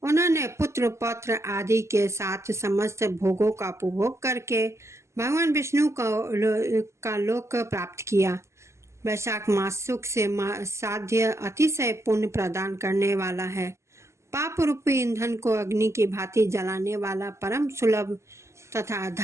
उन्होंने पुत्र पौत्र आदि के साथ समस्त भोगों का उपभोग करके भगवान विष्णु का लोक प्राप्त किया। वैशाख मास सुख से साध्य अतिशय पुण्य प्रदान करने वाला है। पाप रूपी ईंधन को अग्नि की भांति जलाने वाला, परम सुलभ तथा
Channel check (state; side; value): late; left; 0.13 ms